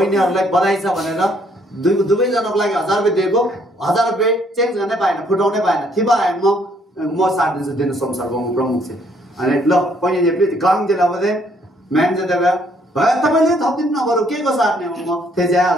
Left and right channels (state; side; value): normal; both; correlation 0.66